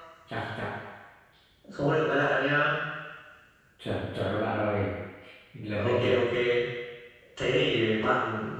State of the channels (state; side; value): identical; both; correlation 1.00